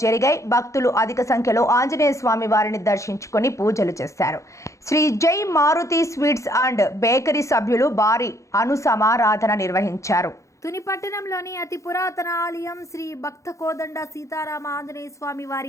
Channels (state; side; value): late; right; 0.15 ms